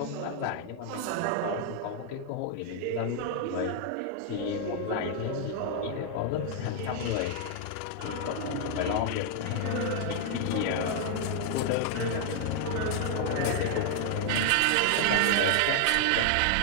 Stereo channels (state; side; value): different; both; correlation 0.00